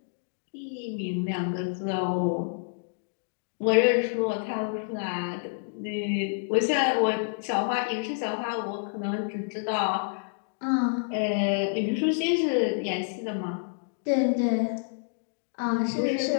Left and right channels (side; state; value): right; silent; digital silence